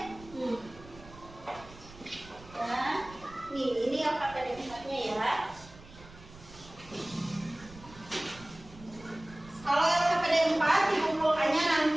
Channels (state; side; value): noise; right; rumble, 20 dB below the sound